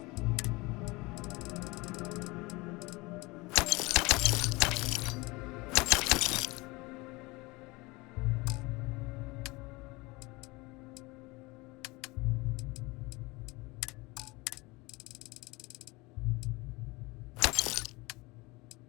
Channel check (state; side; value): quieter; right; 23.6 dB